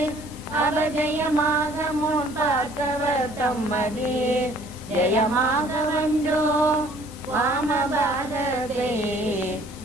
அபஜயமாக முன் பார்த்தவர் தம்மதி ஜெயமாக வந்தோ வாமபாதத்தை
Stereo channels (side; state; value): both; normal; correlation 0.56